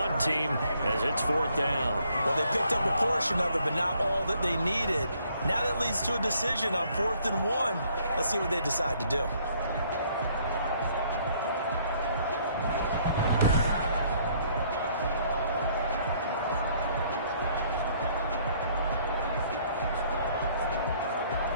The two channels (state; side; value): inverted; both; correlation -0.64